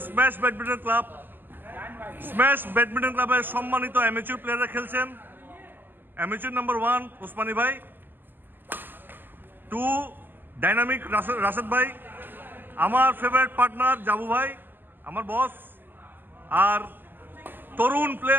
smash badminton club. Smash badminton ক্লাবের সম্মানিত অ্যামেচুর প্লেয়াররা খেলছেন। অ্যামেচুর নাম্বার 1 ওসমানী ভাই, 2 ডাইনামিক রাশেদ ভাই, আমার ফেভারিট পার্টনার জাবু ভাই, আমার বস, আর তরুণ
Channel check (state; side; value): late; left; 0.091 ms